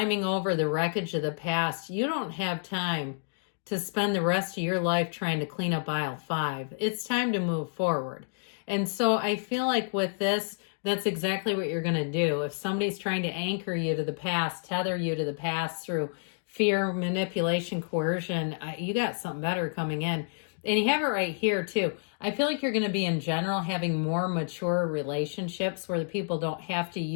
over the wreckage of the past. You don't have time to spend the rest of your life trying to clean up aisle 5. It's time to move forward. And so I feel like with this, that's exactly what you're going to do. If somebody's trying to anchor you to the past, tether you to the past through fear, manipulation, coercion, you got something better coming in. And you have it right here too. I feel like you're going to be in general having more mature relationships where the people don't have to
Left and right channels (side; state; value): right; silent; digital silence